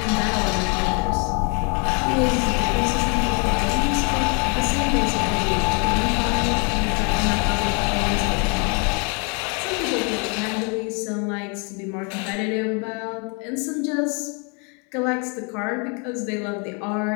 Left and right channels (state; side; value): quieter; right; 35.1 dB